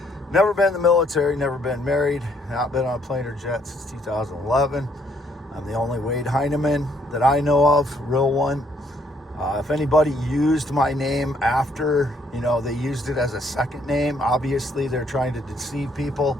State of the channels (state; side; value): normal; both; correlation 0.68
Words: Never been in the military, never been married, not been on a plane or jet since 2011. I'm the only Wade Heineman that I know of, real one. If anybody used my name after, they used it as a second name, obviously they're trying to deceive people.